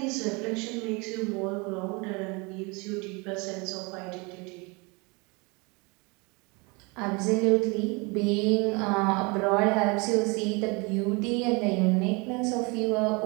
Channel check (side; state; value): left; quieter; 28.5 dB